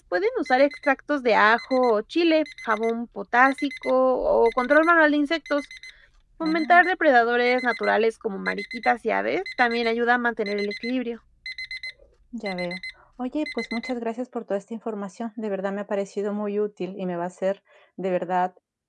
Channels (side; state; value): both; identical; correlation 1.00